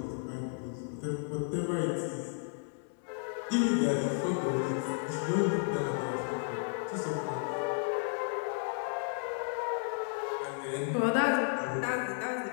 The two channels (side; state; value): right; silent; 56 dB below the other